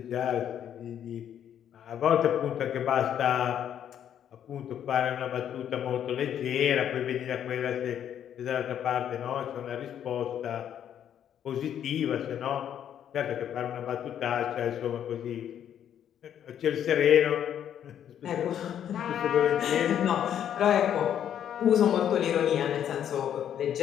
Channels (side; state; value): right; quieter; 9.7 dB